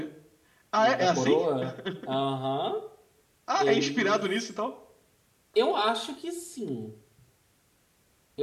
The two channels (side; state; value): both; identical; correlation 1.00